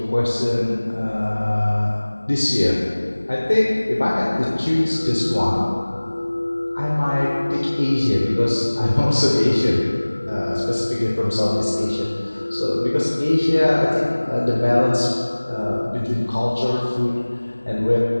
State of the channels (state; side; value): inverted; both; correlation -1.00